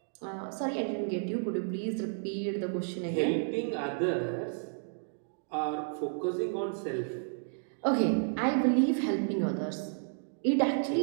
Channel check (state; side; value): silent; left; digital silence